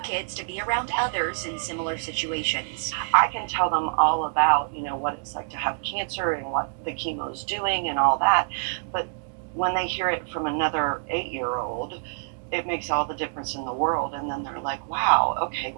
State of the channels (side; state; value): left; silent; digital silence